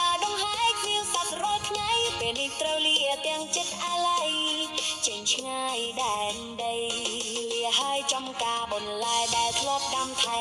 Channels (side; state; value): both; identical; correlation 1.00